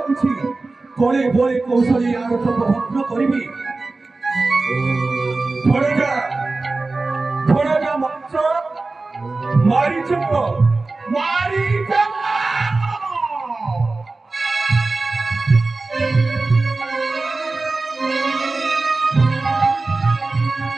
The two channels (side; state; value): left; quieter; 3.5 dB